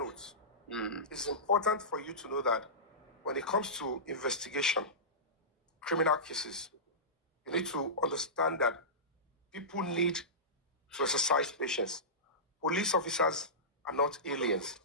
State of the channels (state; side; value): normal; both; correlation -0.18